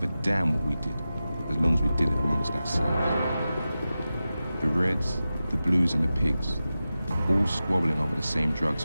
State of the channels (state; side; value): inverted; both; correlation -0.94